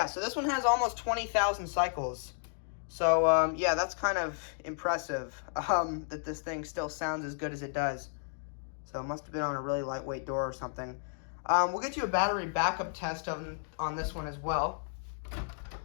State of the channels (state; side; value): silent; right; digital silence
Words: so this one has almost 20,000 cycles. So, yeah, that's kind of impressive that this thing still sounds as good as it does. So it must have been on a really lightweight door or something. We'll get you a battery backup test on this one as well.